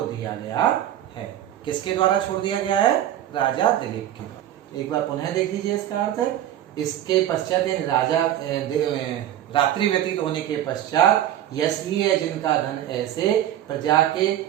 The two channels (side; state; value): left; quieter; 11.9 dB